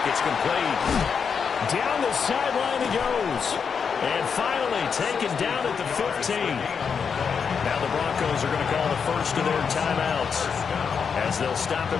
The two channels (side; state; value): right; quieter; 6.3 dB